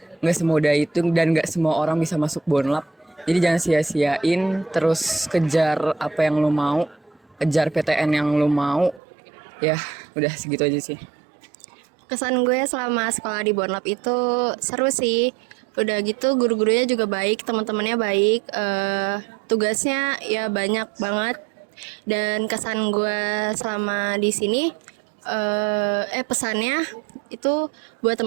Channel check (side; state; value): left; drops out; at 9.0 s